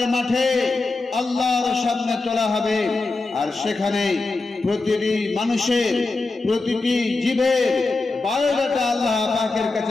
মাঠে আল্লাহর সামনে তোলা হবে, আর সেখানে প্রতিটি মানুষের, প্রতিটি জীবের বায়োডাটা আল্লাহ পাকের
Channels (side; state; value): right; quieter; 3.5 dB